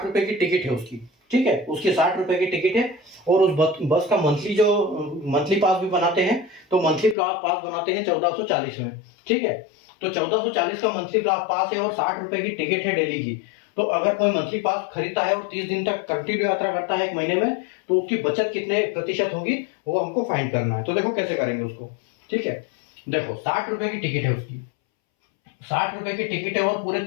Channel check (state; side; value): drops out; right; at 7.2 s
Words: रुपए की टिकट है उसकी, ठीक है, उसकी 60 रुपए की टिकट है, और उस बस का मंथली पास भी बनाते हैं, तो मंथली पास बनाते हैं 1440 में, ठीक है। तो 1440 का मंथली पास है और 60 रुपए की टिकट है डेली की। तो अगर कोई मंथली पास खरीदता है और 30 दिन तक कंटिन्यू यात्रा करता है एक महीने में, तो उसकी बचत कितने प्रतिशत होगी वो हमको फाइंड करना है। तो देखो कैसे करेंगे उसको, ठीक है। देखो 60 रुपए की टिकट है उसकी, 60 रुपए की टिकट है और पूरे